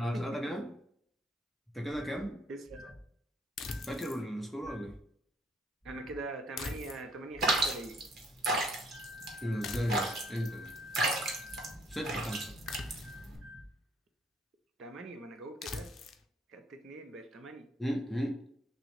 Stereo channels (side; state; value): both; normal; correlation 0.65